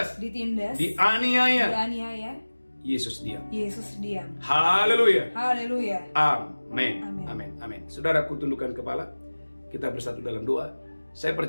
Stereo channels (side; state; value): both; inverted; correlation -1.00